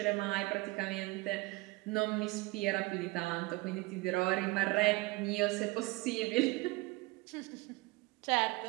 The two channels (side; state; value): left; quieter; 22.6 dB